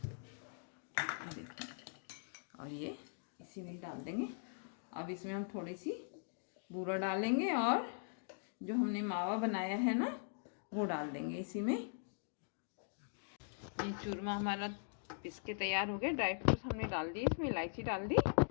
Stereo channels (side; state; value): right; silent; digital silence